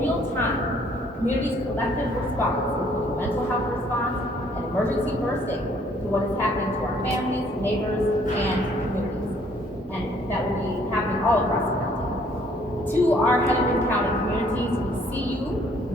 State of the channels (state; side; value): normal; both; correlation 0.63